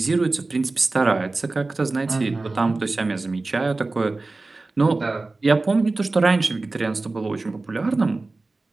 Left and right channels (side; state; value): left; quieter; 3.4 dB